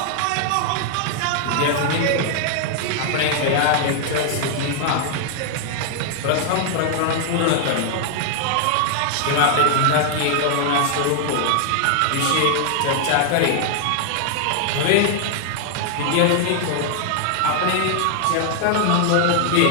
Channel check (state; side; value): different; both; correlation 0.00